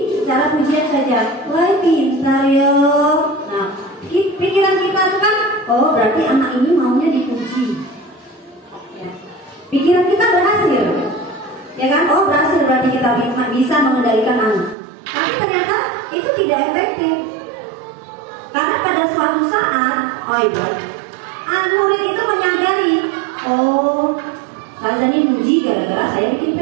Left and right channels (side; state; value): left; drops out; at 14.8 s